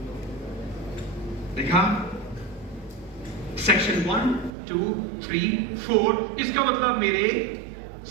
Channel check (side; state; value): left; drops out; at 4.5 s